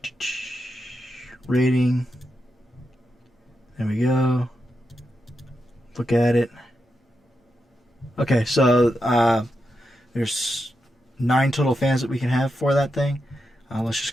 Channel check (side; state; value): both; normal; correlation 0.87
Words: rating. There we go. Look at it. Okay, so there's 9 total fans that we can have for that thing. Let's just